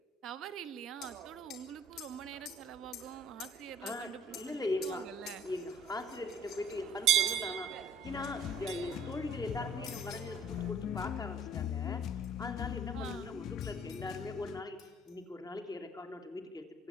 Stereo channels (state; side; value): normal; both; correlation 0.55